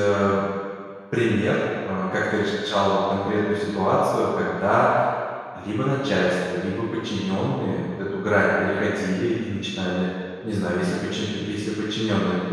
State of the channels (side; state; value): both; identical; correlation 1.00